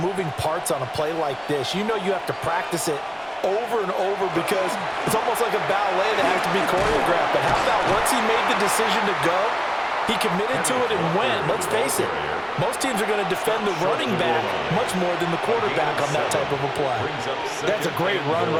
parts on a play like this? You know you have to practice it over and over because it's almost like a ballet that has to be choreographed. But how about once he made the decision to go, he committed to it and went. Let's face it, most teams are going to defend the running back much more than the quarterback on that type of a play. That's a great run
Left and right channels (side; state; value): both; identical; correlation 1.00